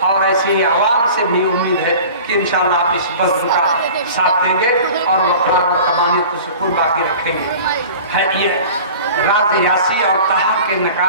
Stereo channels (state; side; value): inverted; both; correlation -0.41